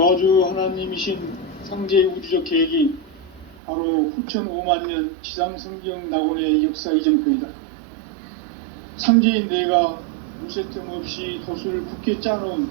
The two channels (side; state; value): left; drops out; at 3.6 s